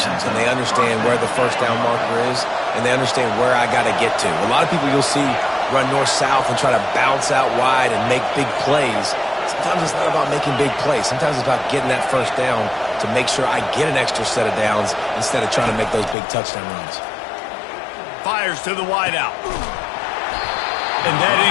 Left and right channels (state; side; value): drops out; right; at 16.2 s